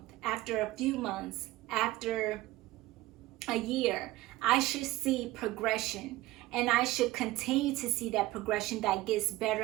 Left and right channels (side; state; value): left; quieter; 17.6 dB